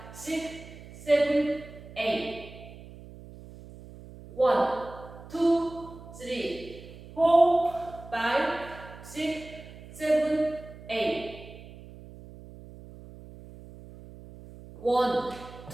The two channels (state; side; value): noise; right; hum, 17 dB below the sound